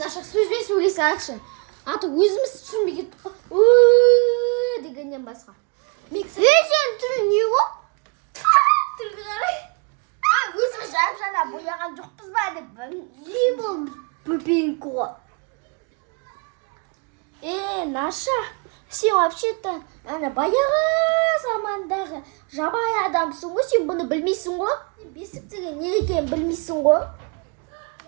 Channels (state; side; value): quieter; left; 33.0 dB